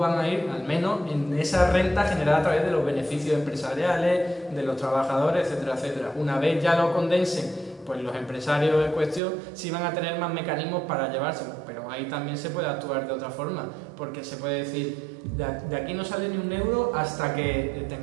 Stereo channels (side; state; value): left; drops out; at 9.2 s